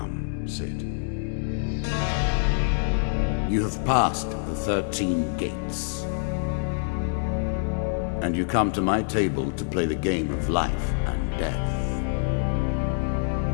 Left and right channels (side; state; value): right; silent; digital silence